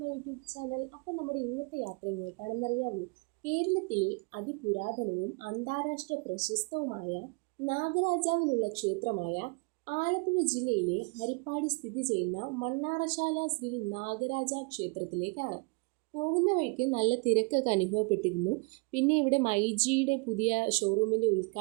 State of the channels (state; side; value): quieter; left; 31.6 dB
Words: YouTube channel. അപ്പം നമ്മുടെ ഇന്നത്തെ യാത്ര എങ്ങോട്ടാണെന്നറിയാമോ? കേരളത്തിലെ അതിപുരാതനവും അന്താരാഷ്ട്ര പ്രശസ്തവുമായ നാഗരാജാവിനുള്ള ക്ഷേത്രമായ ആലപ്പുഴ ജില്ലയിലെ ഹരിപ്പാട് സ്ഥിതി ചെയ്യുന്ന മണ്ണാറശാല ശ്രീ നാഗരാജ ക്ഷേത്രത്തിലേക്കാണ്. പോകുന്ന വഴിക്ക് നല്ല തിരക്കൊക്കെ അനുഭവപ്പെട്ടിരുന്നു. പിന്നെ ഇവിടെ മൈജിയുടെ പുതിയ ഷോറൂമിൻ്റെ